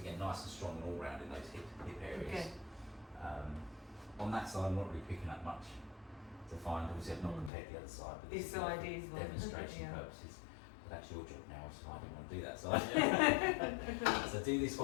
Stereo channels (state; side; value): drops out; right; at 7.5 s